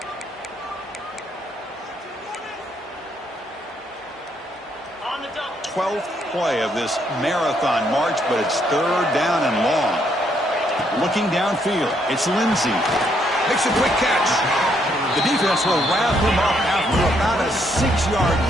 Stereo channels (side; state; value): both; normal; correlation 0.72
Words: On the double. 12th play of this marathon march, but it's 3rd down and long. Looking downfield, it's Lindsey. Makes a quick catch. The defense will wrap him up after about a 6-yard